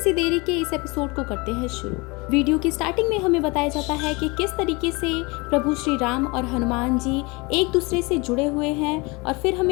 देरी के इस एपिसोड को करते हैं शुरू। वीडियो की स्टार्टिंग में हमें बताया जाता है कि किस तरीके से प्रभु श्री राम और हनुमान जी एक दूसरे से जुड़े हुए हैं। और फिर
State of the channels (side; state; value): right; quieter; 26.4 dB